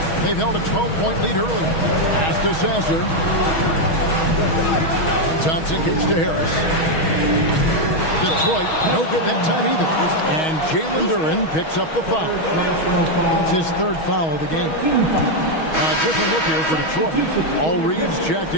They've held a 12-point lead early. Pass to Sasser. Thompson kicks to Harris. Detroit, no good that time either. And Jalen Duren picks up the foul. That's his third foul of the game. A different look here for Detroit. All reads checked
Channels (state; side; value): late; right; 6.3 ms